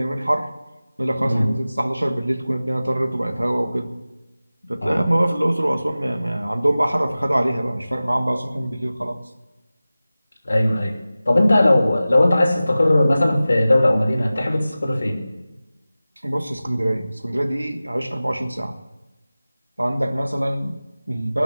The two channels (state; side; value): inverted; both; correlation -0.96